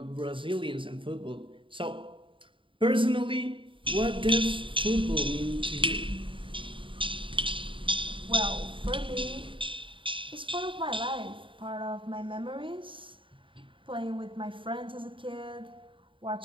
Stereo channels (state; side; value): late; left; 0.25 ms